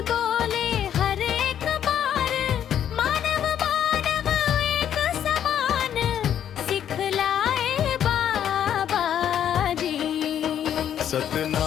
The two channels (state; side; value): quieter; right; 9.8 dB